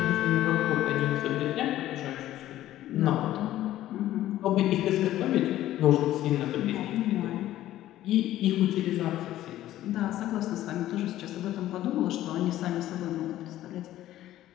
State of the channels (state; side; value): quieter; right; 13.8 dB